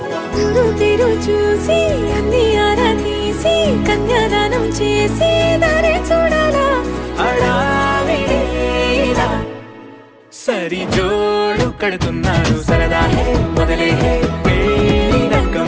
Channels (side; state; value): both; identical; correlation 1.00